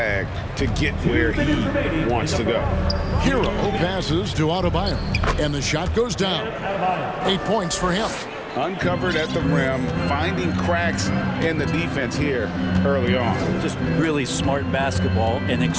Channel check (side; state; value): both; identical; correlation 1.00